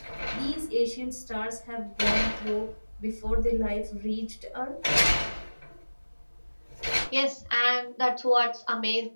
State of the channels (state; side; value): inverted; both; correlation -1.00